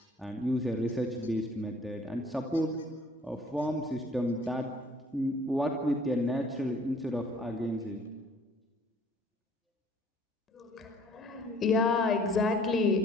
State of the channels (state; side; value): normal; both; correlation 0.56